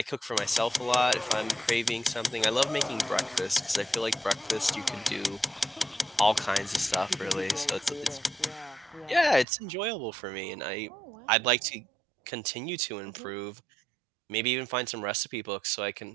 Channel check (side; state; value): left; drops out; at 9.5 s